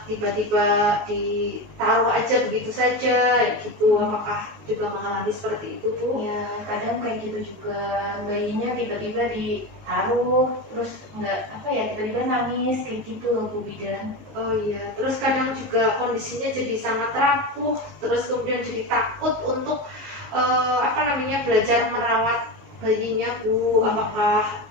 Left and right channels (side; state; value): left; late; 19 ms